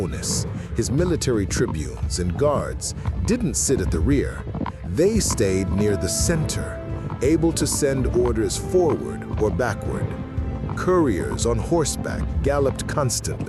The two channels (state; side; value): identical; both; correlation 1.00